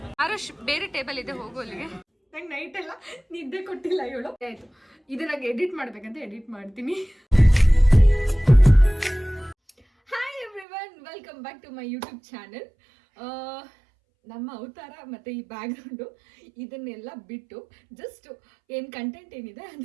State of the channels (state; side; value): drops out; left; at 10.7 s